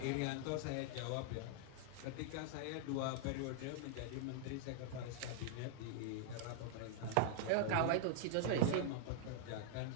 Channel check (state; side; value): different; both; correlation -0.01